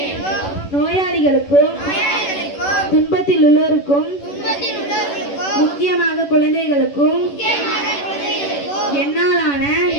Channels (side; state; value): right; late; 11 ms